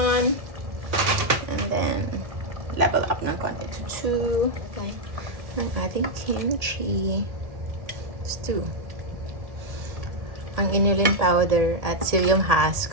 and then level up ng konti to 2. Okay. Ang ating kimchi. It's 2. Ang inulin powder at psyllium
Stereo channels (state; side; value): late; left; 1.8 ms